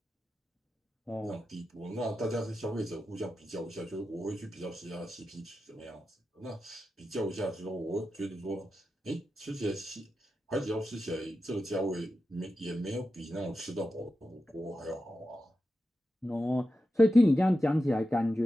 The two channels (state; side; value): normal; both; correlation 0.90